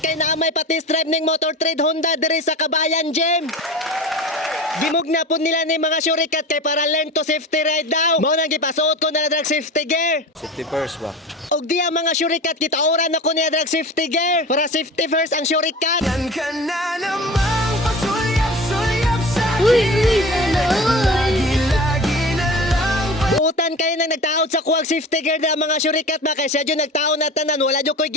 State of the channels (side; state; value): both; normal; correlation 0.35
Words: kay naamay pati stripe ning motor trade Honda diri sa Kabayan Gym. Gimug na po nila ni mga syurikat kay para learn to safety ride daw. Mao nang gipasuot ko na drag safety gear. Safety first ba? Og diya mga syurikat kita oran ako niya drag safety gear. Para safety first ang syurikat. Yan ka na namang pasulyap-sulyap sa'kin. Lagi na lang Buutan kayo na nagtaod sa kuwag safety gear na mga syurikat ba kay siya dyan nagtaon na tanan wala dyan ko'y